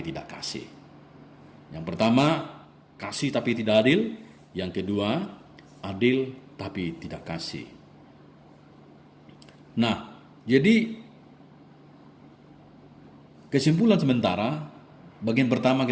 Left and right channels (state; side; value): identical; both; correlation 1.00